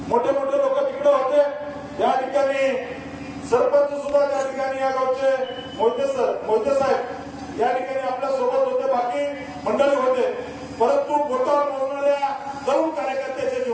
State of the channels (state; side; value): identical; both; correlation 1.00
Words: मोठे मोठे लोक तिकडे होते. या ठिकाणी सरपंच सुद्धा त्या ठिकाणी या गावचे मोहिते साहेब या ठिकाणी आपल्या सोबत होते, बाकी मंडळी होते. परंतु बोटावर मोजणाऱ्या तरुण कार्यकर्त्याच्या